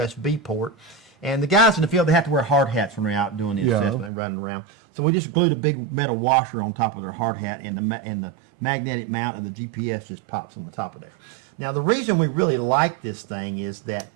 port. And the guys in the field, they have to wear hard hats when they're out doing the assessment and running around. So we just glued a big metal washer on top of their hard hat, and the magnetic mount of the GPS just pops on the top of there. Now, the reason we really like this thing is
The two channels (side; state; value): left; drops out; at 4.1 s